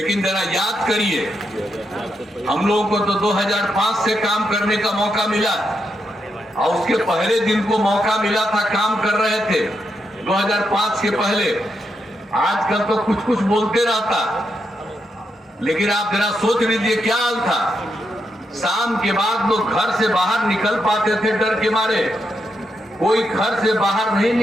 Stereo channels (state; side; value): normal; both; correlation 0.82